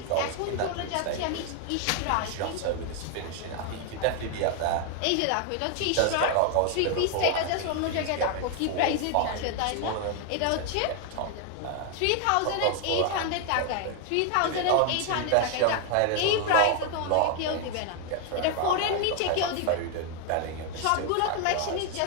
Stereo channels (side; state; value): both; different; correlation 0.00